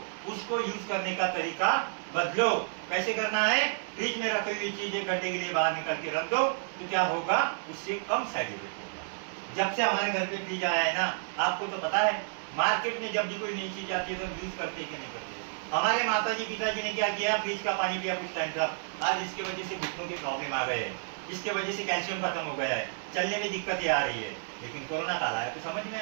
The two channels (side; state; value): left; silent; digital silence